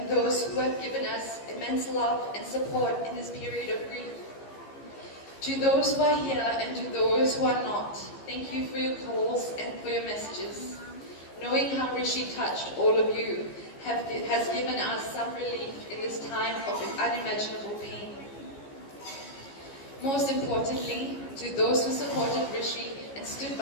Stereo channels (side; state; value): right; late; 15 ms